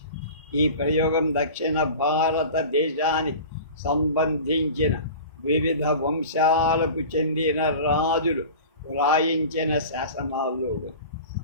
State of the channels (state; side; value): inverted; both; correlation -0.37